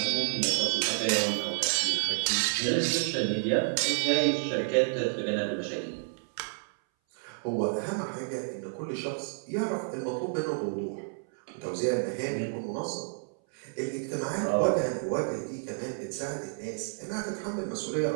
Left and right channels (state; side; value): silent; left; 58 dB below the other